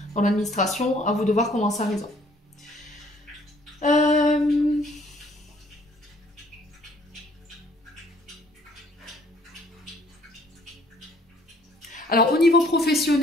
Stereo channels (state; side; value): normal; both; correlation 0.60